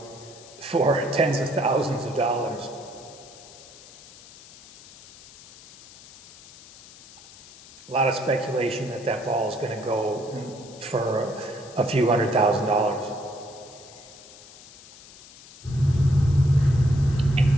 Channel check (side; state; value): left; noise; hiss, 20 dB below the sound